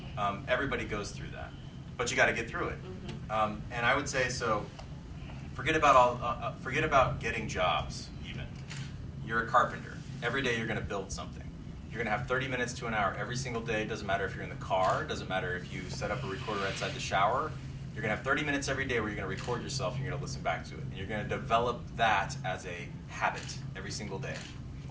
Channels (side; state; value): both; identical; correlation 1.00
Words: Everybody goes through that. But you got to get through it. And I would say, so forget about getting jobs even. You're a carpenter. Every day you're going to build something. You're going to have 30 minutes to an hour every single day. Doesn't matter if you're in the car. Doesn't matter if you set up a recorder outside the shower. You're going to have 30 minutes every day where you're going to record yourself and you're going to listen back to it. And you're going to develop that as a habit every single day.